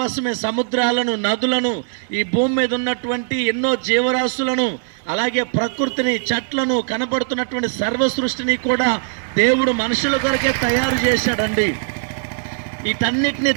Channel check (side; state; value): left; silent; digital silence